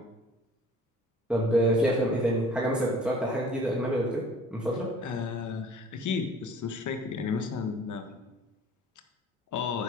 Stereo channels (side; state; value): both; normal; correlation 0.50